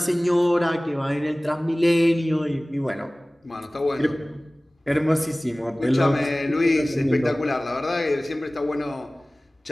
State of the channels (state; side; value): normal; both; correlation 0.98